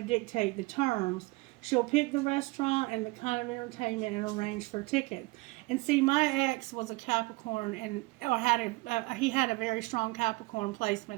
dictate the terms. She'll pick the restaurant and the kind of entertainment and arrange for tickets. And see, my ex was a Capricorn, and he had a very strong Capricorn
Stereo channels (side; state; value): left; quieter; 23.3 dB